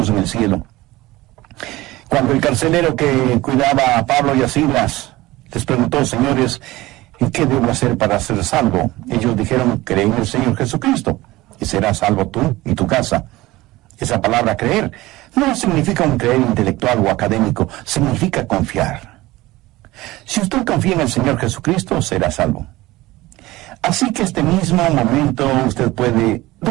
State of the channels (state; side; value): quieter; left; 18.7 dB